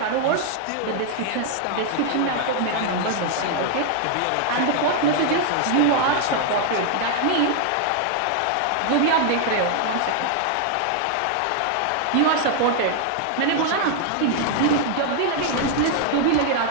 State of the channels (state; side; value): different; both; correlation 0.00